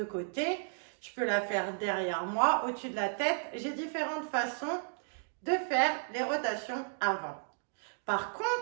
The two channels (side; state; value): left; silent; digital silence